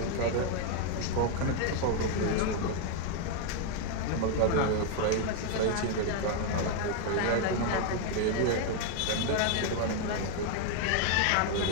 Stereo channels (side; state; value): both; different; correlation 0.01